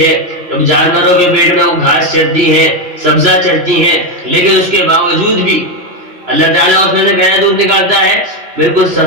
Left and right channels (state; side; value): late; left; 3.0 ms